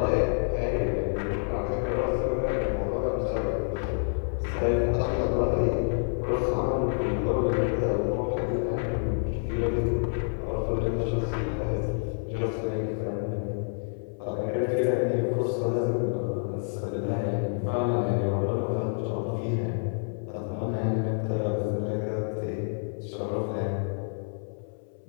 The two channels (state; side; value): silent; right; 59 dB below the other